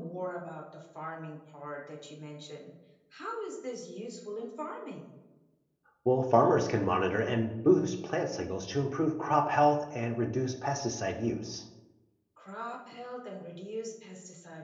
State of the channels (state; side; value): identical; both; correlation 1.00